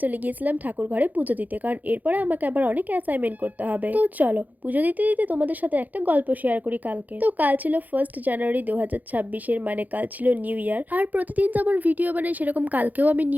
চলে গিয়েছিলাম ঠাকুর ঘরে পুজো দিতে, কারণ এরপরে আমাকে আবার অনেক অ্যাসাইনমেন্ট করতে হবে। তো চলো পুজো দিতে দিতে তোমাদের সাথে একটা গল্প শেয়ার করি। কালকে তো কাল ছিল 1 জানুয়ারি 2026, মানে কাল ছিল নিউ ইয়ার। আর প্রতিদিন যেমন ভিডিও বানাই সেরকম কালকেও আমি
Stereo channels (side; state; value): left; late; 0.081 ms